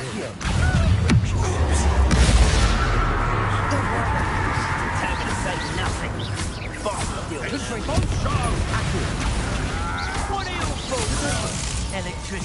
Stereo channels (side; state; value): both; identical; correlation 1.00